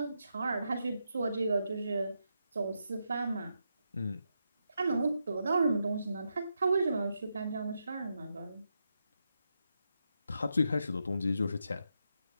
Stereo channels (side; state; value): both; inverted; correlation -0.84